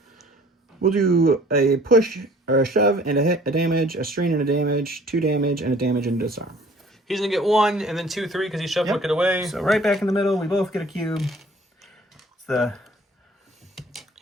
We'll do a push, or a shove, and a hit, a damage, a strain and a damage, 2 damage, and a damage and a disarm. He's going to get 1, and then 2, 3, because he shoved Wicket away. So right back in the middle, we both get a cube.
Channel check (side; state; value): both; normal; correlation 0.53